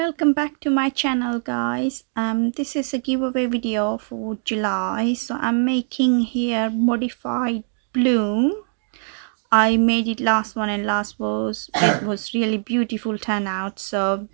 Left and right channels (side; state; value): left; silent; 63 dB below the other